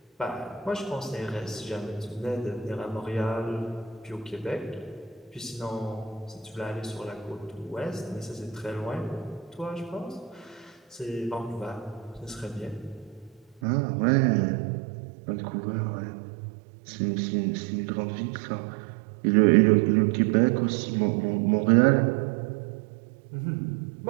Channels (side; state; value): left; drops out; at 13.6 s